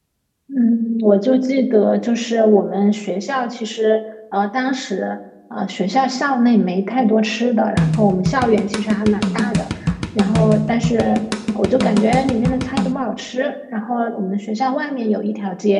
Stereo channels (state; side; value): identical; both; correlation 1.00